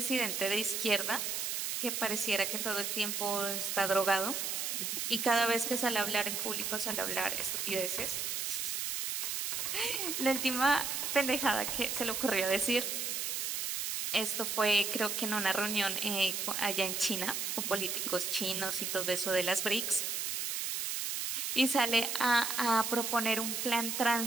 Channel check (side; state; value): right; noise; hiss, 1 dB below the sound